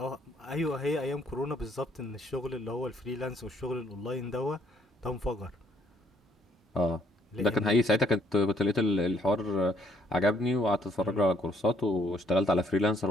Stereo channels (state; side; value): normal; both; correlation 0.67